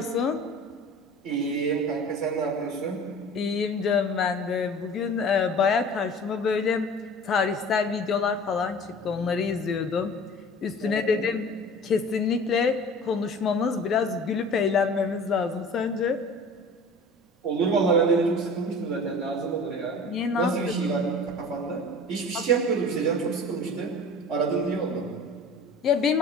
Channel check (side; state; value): both; normal; correlation 0.42